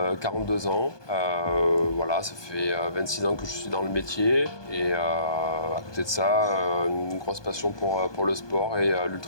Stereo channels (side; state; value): right; late; 1.2 ms